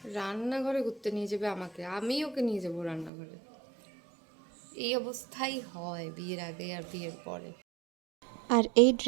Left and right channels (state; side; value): drops out; left; at 3.1 s